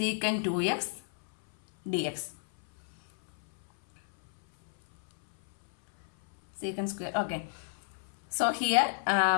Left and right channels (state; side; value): silent; right; 57 dB below the other